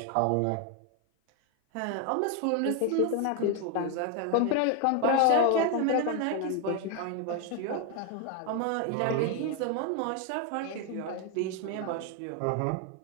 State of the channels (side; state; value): both; different; correlation 0.01